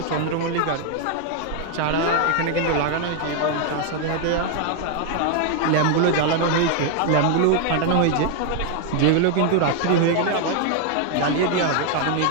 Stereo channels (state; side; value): different; both; correlation 0.00